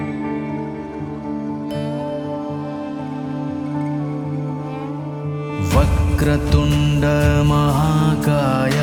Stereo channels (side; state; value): both; identical; correlation 1.00